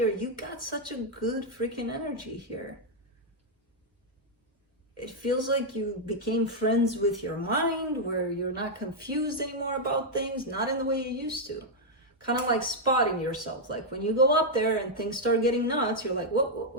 You got such a good freaking energy here. It feels like you became friends with your mind, where you're not confused anymore about things, not in the way you used to. Kind of like spotting yourself. Like when you go up there and things start getting nuts, you're like,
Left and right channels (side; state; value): both; normal; correlation -0.03